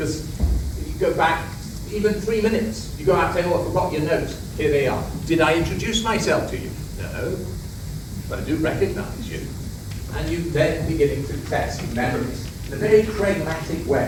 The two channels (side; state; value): both; identical; correlation 1.00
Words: if you go back even 3 minutes, you go out and say, oh, I forgot your notes. Here they are. Did I introduce myself to you? No, but I do recognize you. And you then beginning to test memories in a very pragmatic way,